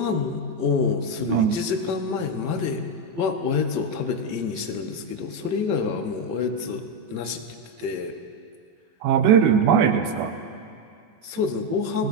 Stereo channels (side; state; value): left; late; 18 ms